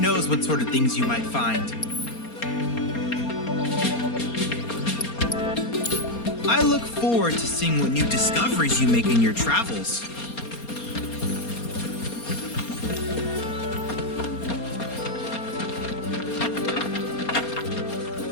what sort of things you might find. I look forward to seeing what new discoveries you make in your travels.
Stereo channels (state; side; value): late; right; 4.3 ms